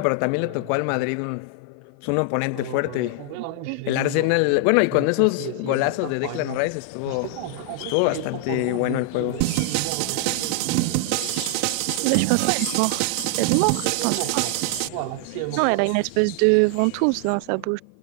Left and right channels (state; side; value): different; both; correlation 0.00